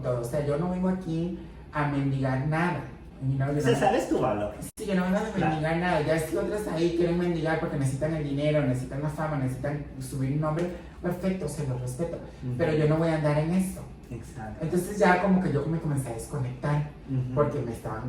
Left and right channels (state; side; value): identical; both; correlation 1.00